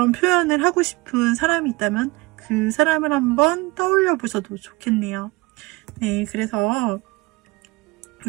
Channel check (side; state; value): left; quieter; 23.5 dB